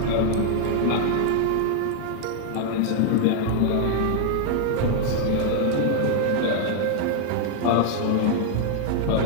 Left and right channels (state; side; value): different; both; correlation 0.00